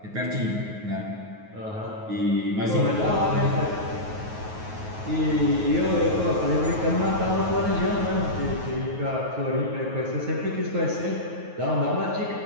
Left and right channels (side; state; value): left; late; 9.4 ms